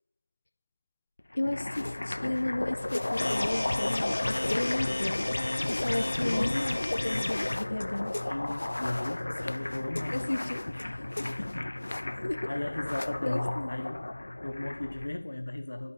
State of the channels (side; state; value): both; inverted; correlation -1.00